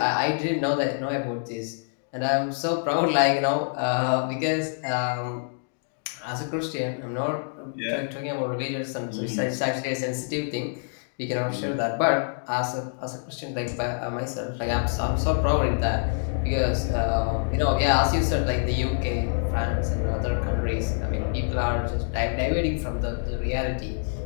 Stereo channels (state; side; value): silent; right; digital silence